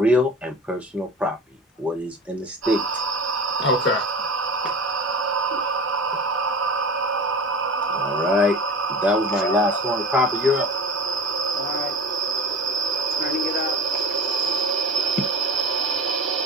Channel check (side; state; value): both; normal; correlation 0.35